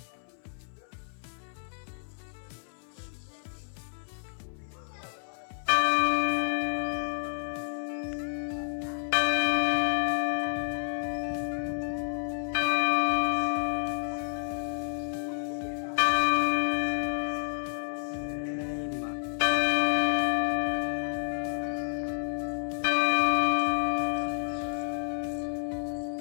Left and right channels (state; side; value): silent; right; 58 dB below the other